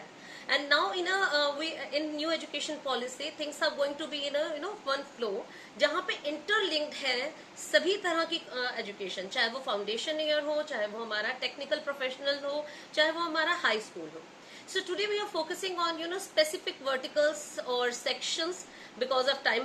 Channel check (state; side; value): identical; both; correlation 1.00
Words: And now in new education policy things are going to be in one flow, जहाँ पे इंटरलिंक्ड है सभी तरह की एजुकेशन, चाहे वो फाउंडेशन ईयर हो, चाहे वो हमारा टेक्निकल प्रोफेशनल हो, चाहे वो हमारा हाई स्कूल हो. So today we are focusing on specific verticals or sections because of